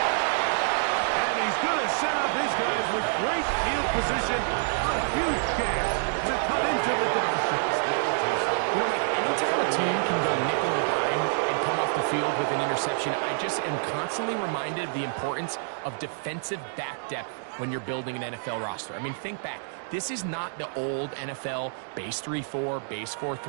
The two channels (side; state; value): left; silent; digital silence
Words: And he's going to set up his guys with great field position on a huge chance to cut into the deficit. You know, Mike, anytime a team can go nickel or dime and come off the field with an interception, I just am constantly reminded of the importance of defensive back depth when you're building an NFL roster. I mean, think back. This is not the old NFL base 3-4, base